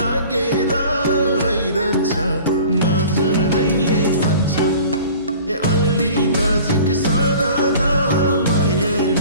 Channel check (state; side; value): inverted; both; correlation -0.44